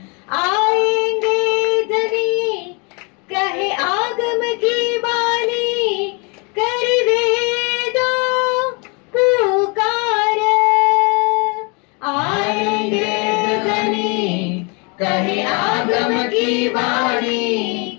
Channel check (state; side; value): quieter; right; 32.0 dB